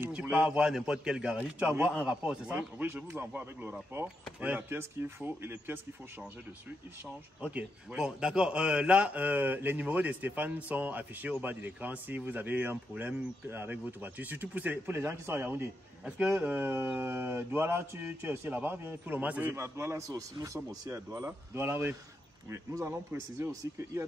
tu peux avoir n'importe quel garagiste, tu vas avoir un rapport, c'est ça? Oui, je vous envoie avec le rapport et la pièce qu'il faut et les pièces qu'il faut changer dessus, ils changent. Ok, bon d'accord, là les numéros de Stéphane sont affichés au bas de l'écran si vous avez un problème avec votre voiture, surtout pour les gens qui sont à Yaoundé. Est-ce que Douala, tu es aussi là-bas? Pour le moment, oui, à Douala, nous sommes aussi à Douala. Douala, oui. Oui, nous allons préciser aussi qu'il y a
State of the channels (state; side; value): normal; both; correlation 0.83